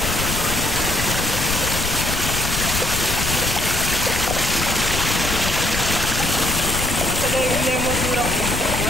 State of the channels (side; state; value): left; noise; rumble, 4 dB below the sound